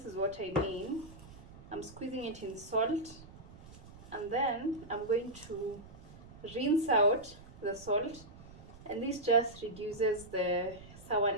is what I mean. I'm squeezing it in salt, and then I'm going to rinse out the salt, and this just reduces the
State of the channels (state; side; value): noise; right; rumble, 18 dB below the sound